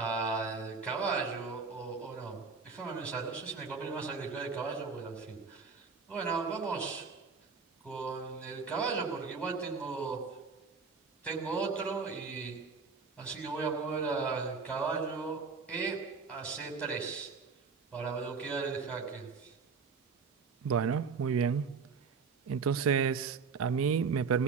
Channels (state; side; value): quieter; left; 5.1 dB